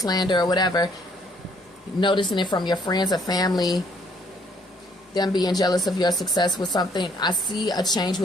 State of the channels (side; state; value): both; normal; correlation 0.65